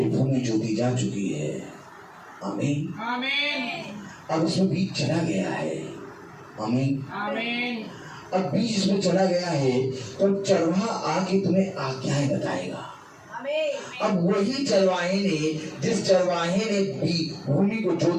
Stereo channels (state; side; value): identical; both; correlation 1.00